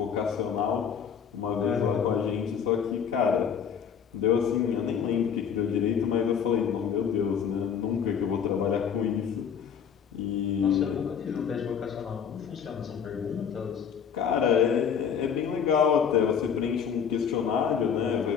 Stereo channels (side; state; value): right; quieter; 7.5 dB